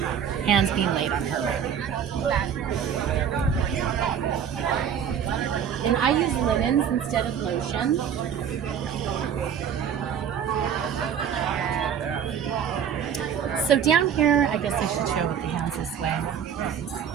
being laid on her. And I use linens instead of lotion. So down here, I guess I should show with the hands this way.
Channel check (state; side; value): quieter; left; 8.2 dB